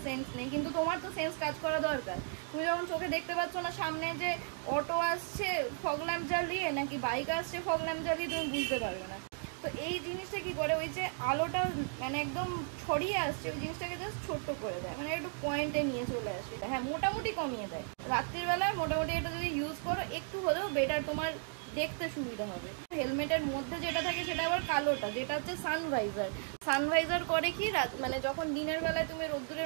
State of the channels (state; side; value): silent; left; 54 dB below the other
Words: সেন্স নেই, কিন্তু তোমার তো সেন্স কাজ করা দরকার। তুমি যখন চোখে দেখতে পাচ্ছ না সামনে যে অটো আসছে ফগ ল্যাম্প জ্বালিয়ে নাকি বাইক আসছে ফগ ল্যাম্প জ্বালিয়ে, তুমি বুঝতে পারবে না। তো এই জিনিসটা কি করে, ওই যে আলোটা মানে একদম ছড়িয়ে আসছে ওই জিনিসটাকে জাস্ট ছোট্ট করে দেয়, মানে একটু পয়েন্টে নিয়ে চলে আসে। হ্যাঁ, মোটামুটি কমিয়ে দেয়। রাত্রির বেলায় মোটামুটি এটা যদি ইউজ করো একটু হলেও বেটার, তোমার দেখতে সুবিধা হবে। হেলমেটের মধ্যে যেটা থাকে সেটা আবার কালোটা, যেটা হচ্ছে সানভাইজার। সানভাইজার করে কি, মানে যখন দিনের বেলায় তুমি